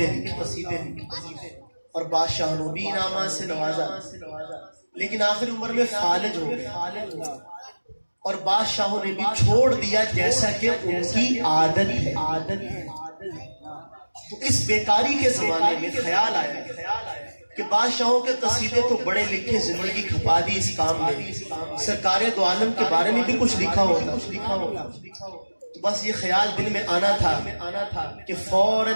لکھے اور بادشاہوں بھی انعامات سے نوازا، لیکن آخر عمر میں فالج ہو گئے اور بادشاہوں نے بھی چھوڑ دیا جیسا کہ ان کی عادت ہے. تو اس بیکاری کے زمانے میں خیال آیا کہ بادشاہوں کے قصیدے تو بڑے لکھے، زندگی کھپا دی اس کام میں، سرکار دو عالم کے بارے میں بھی کچھ لکھا ہوتا. تو بس یہ خیال دل میں آنا تھا کہ فوراً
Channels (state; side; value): inverted; both; correlation -1.00